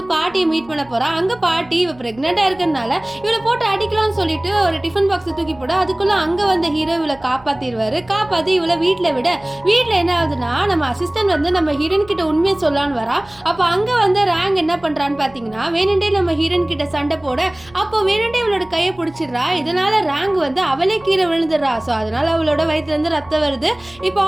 பாட்டியை மீட் பண்ண போகிறா. அங்கே பாட்டி இவள் ப்ரெக்னெண்ட்டாக இருக்கிறதுனால இவளை போட்டு அடிக்கலாம்னு சொல்லிட்டு ஒரு டிஃபன் பாக்ஸை தூக்கி போட, அதுக்குள்ளே அங்கே வந்த ஹீரோ இவளை காப்பாற்றிடுவார். காப்பாற்றி இவளை வீட்டில் விட, வீட்டில் என்ன ஆகுதுன்னா, நம்ம அசிஸ்டன்ட் வந்து நம்ம ஹீரோயின் கிட்ட உண்மையை சொல்லான்னு வரா. அப்போ அங்கே வந்து ரேங்க் என்ன பண்ணுறான்னு பார்த்தீங்கன்னா, வேணுண்டே நம்ம ஹீரோயின் கிட்ட சண்டை போட, அப்போ வேணுண்டே இவளோட கையை பிடிச்சிடுறா. இதனால ரேங்க் வந்து அவளே கீழே விழுந்துடுறா. ஸோ அதனால அவளோட வயிற்றுலேருந்து ரத்தம் வருது. இப்போ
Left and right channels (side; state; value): right; noise; hum, 25 dB below the sound